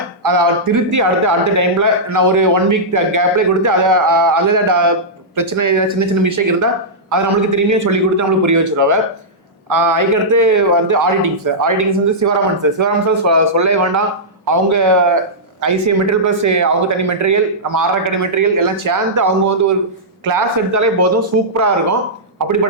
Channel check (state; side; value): normal; both; correlation -0.13